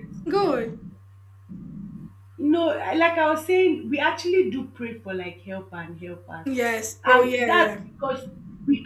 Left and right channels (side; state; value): both; identical; correlation 1.00